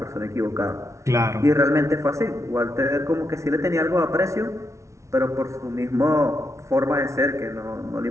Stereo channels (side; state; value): left; late; 0.14 ms